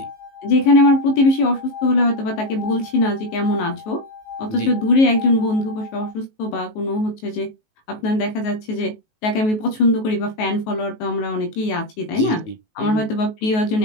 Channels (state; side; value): late; right; 19 ms